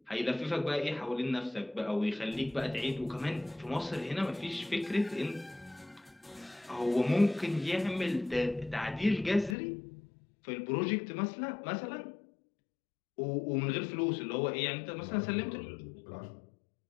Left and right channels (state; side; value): drops out; right; at 9.6 s